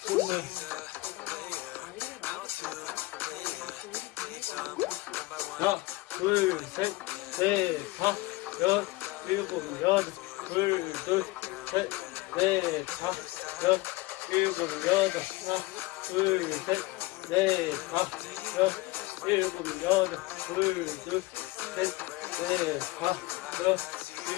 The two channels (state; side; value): quieter; right; 20.6 dB